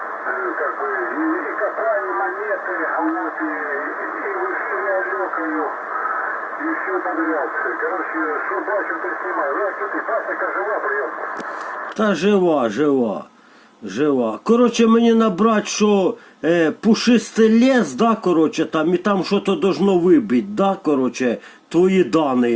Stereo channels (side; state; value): both; identical; correlation 1.00